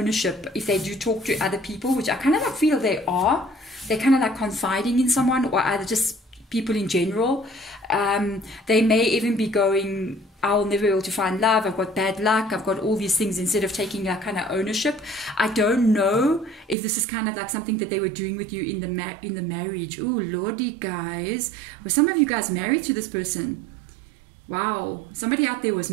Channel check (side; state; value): left; drops out; at 16.8 s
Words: if they do talk to other people, which I kind of like feel they are. They're kind of like confiding in someone, or either just people in general. They may even be going, I'll never be able to find love, I've got bad luck, I've got all these things, instead of taking that kind of ownership. I don't know if this is kind of like something that they were doing with you in the marriage. Oh, Lordy, guys. Were some of you guys married to this person? Wow, somebody out there was